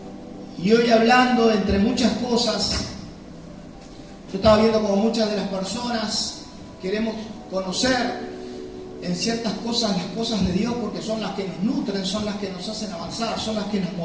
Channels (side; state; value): both; identical; correlation 1.00